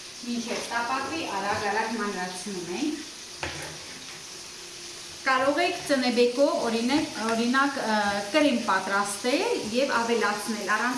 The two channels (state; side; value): identical; both; correlation 1.00